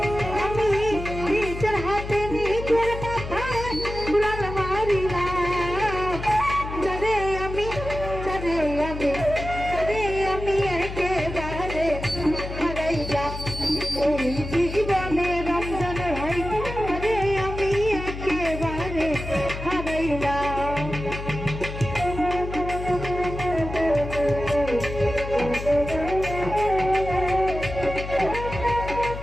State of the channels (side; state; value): left; noise; hum, 8 dB below the sound